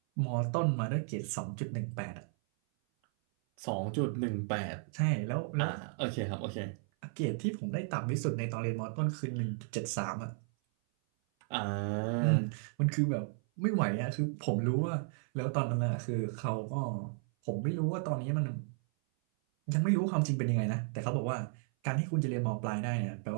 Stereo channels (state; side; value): silent; left; 55 dB below the other